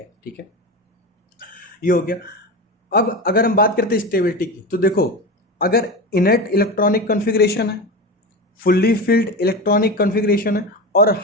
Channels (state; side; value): normal; both; correlation 0.23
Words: ठीक है, ये हो गया। अब अगर हम बात करते हैं स्टेबिलिटी की, तो देखो अगर इनर्ट इलेक्ट्रॉनिक कॉन्फ़िगरेशन है, फुल्ली फिल्ड इलेक्ट्रॉनिक कॉन्फ़िगरेशन है और